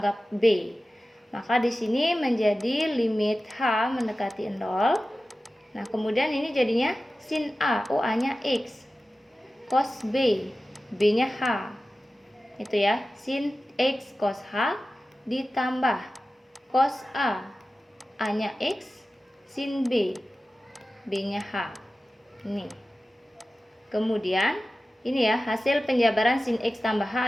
B. Maka di sini menjadi limit H mendekati 0. Nah, kemudian ini jadinya sin A, A-nya X, cos B, B-nya H. Itu ya, sin X cos H ditambah cos A, A-nya X, sin B, B-nya H. Ini. Kemudian ini ya, hasil penjabaran sin X tambah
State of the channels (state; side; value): normal; both; correlation 0.95